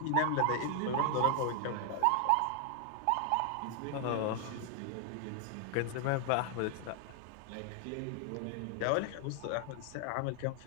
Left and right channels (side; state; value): both; different; correlation 0.00